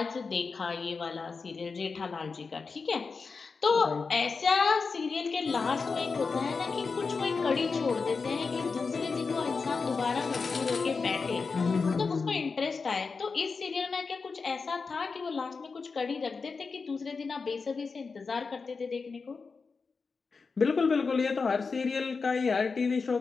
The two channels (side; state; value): right; quieter; 4.7 dB